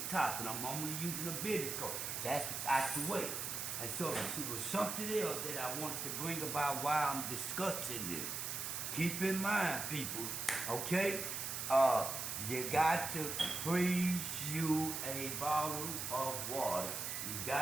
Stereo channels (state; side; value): noise; right; hiss, 3 dB below the sound